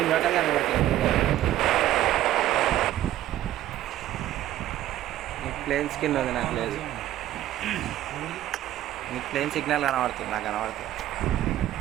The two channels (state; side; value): quieter; left; 13.6 dB